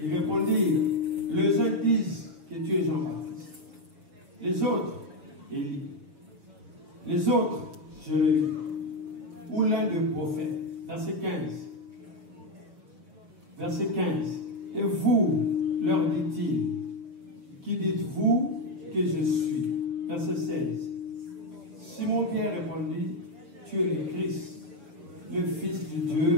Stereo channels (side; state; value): left; late; 6.7 ms